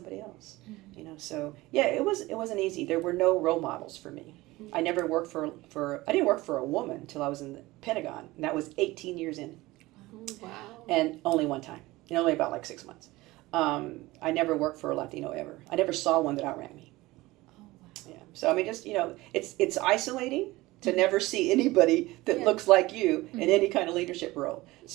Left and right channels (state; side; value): quieter; left; 19.6 dB